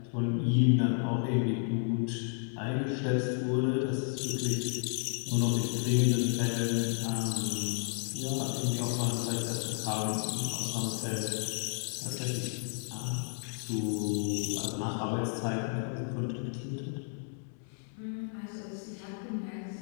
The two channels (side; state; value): right; silent; 56 dB below the other